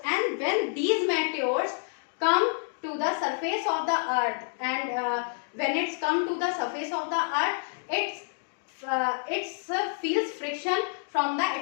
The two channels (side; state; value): right; silent; 58 dB below the other